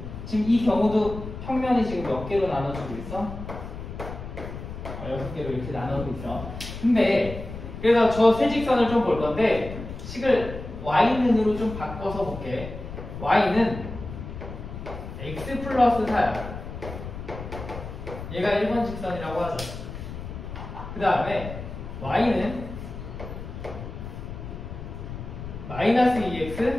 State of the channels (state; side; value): noise; left; rumble, 10 dB below the sound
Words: 지금 이 경우도 평면이 지금 몇 개로 나눠지고 있어? 6개로 이렇게 나누고 있어. 근데 그래서 저 세 직선을 좀 볼 건데 식을 y는으로 좀 바꿔서 볼게. y는 x 플러스 4야. 얘가 1번 직선이라고 하죠. 그 다음에 y는 마이너스